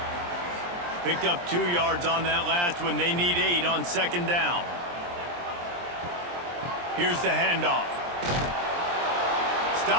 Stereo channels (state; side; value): late; left; 23 ms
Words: Picked up 2 yards on that last one. They need 8 on second down. Here's the handoff.